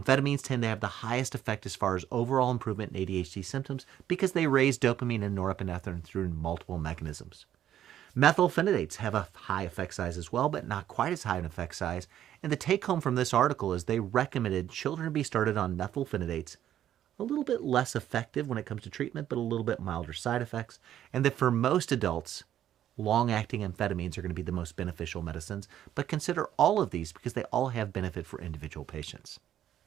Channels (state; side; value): quieter; left; 11.2 dB